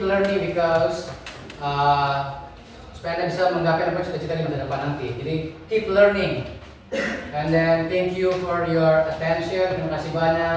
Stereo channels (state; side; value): identical; both; correlation 1.00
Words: learning because supaya Anda bisa menggapai apa yang cita-cita di masa depan nanti. Jadi keep learning. And then thank you for your attention. Terima kasih